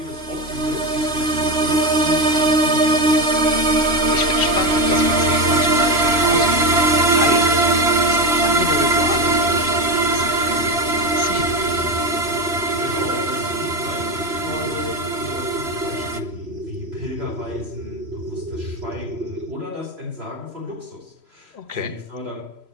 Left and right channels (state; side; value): late; left; 3.0 ms